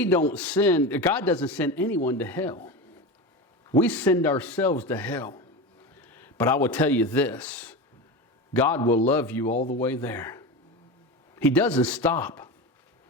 don't send, God doesn't send anyone to hell. We send ourselves to hell. But I will tell you this, God will love you all the way there. He doesn't stop.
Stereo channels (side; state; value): both; normal; correlation 0.24